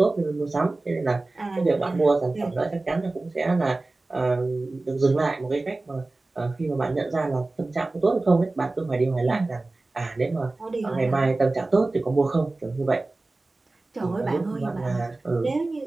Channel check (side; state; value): left; quieter; 3.2 dB